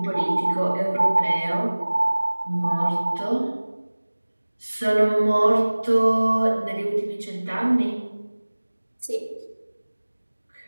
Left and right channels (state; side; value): inverted; both; correlation -1.00